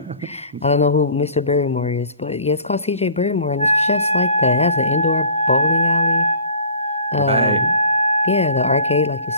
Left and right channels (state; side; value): inverted; both; correlation -0.46